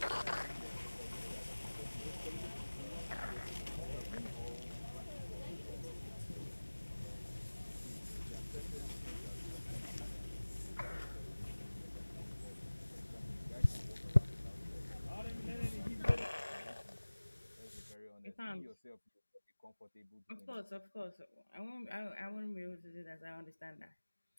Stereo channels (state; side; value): inverted; both; correlation -1.00